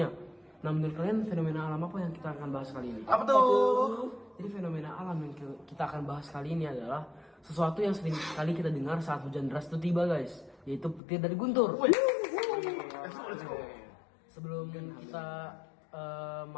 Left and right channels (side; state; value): right; drops out; at 11.0 s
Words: Nah, menurut kalian fenomena alam apa yang kita akan bahas kali ini? Apa tuh? Jadi fenomena alam yang kita akan bahas kali ini adalah sesuatu yang sering kali kita dengar saat hujan deras itu tiba, guys, yaitu petir dari guntur. Sebelum kita